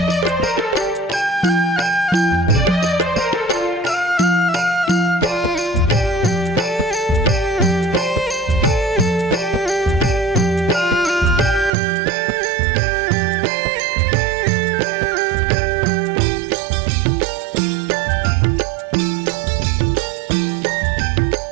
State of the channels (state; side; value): drops out; left; at 11.7 s